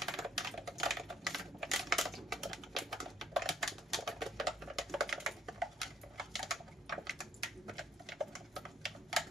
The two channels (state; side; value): normal; both; correlation 0.65